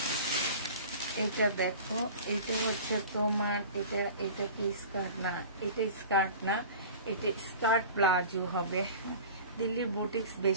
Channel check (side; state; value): both; inverted; correlation -0.39